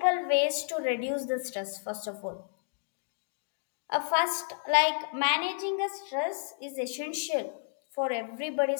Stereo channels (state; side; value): silent; right; digital silence